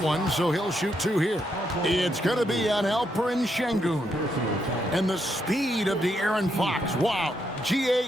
so he'll shoot 2 here. It's going to be on Alperen Şengün. And the speed of De'Aaron Fox. Wow. GA,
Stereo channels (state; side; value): normal; both; correlation 0.78